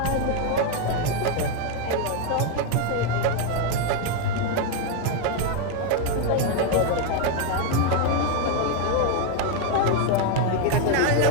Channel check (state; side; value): different; both; correlation 0.01